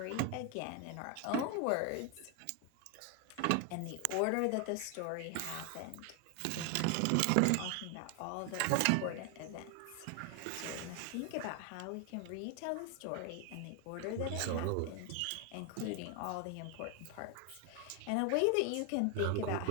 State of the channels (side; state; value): both; different; correlation 0.01